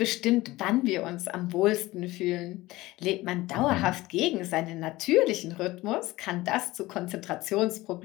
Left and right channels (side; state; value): right; quieter; 18.9 dB